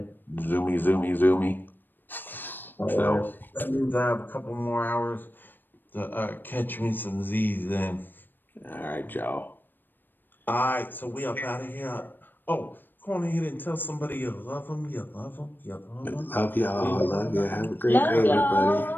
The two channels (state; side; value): late; right; 0.093 ms